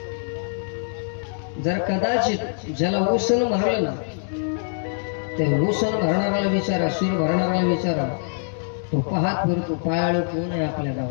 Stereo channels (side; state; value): right; silent; digital silence